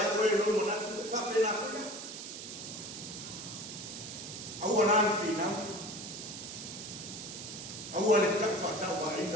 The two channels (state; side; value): noise; right; hiss, 9 dB below the sound